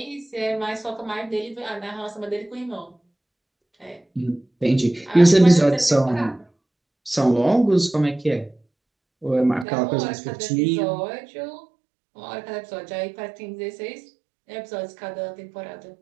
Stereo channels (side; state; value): left; drops out; at 9.7 s